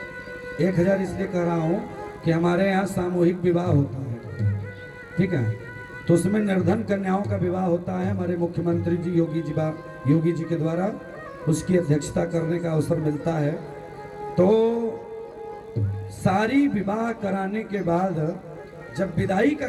1000 इसलिए कह रहा हूँ कि हमारे यहाँ सामूहिक विवाह होता है, ठीक है, तो उसमें निर्धन कन्याओं का विवाह होता है। हमारे मुख्यमंत्री जी योगी जी के द्वारा उसकी अध्यक्षता करने का अवसर मिलता है। तो सारी विवाह कराने के बाद जब विदाई का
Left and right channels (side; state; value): both; identical; correlation 1.00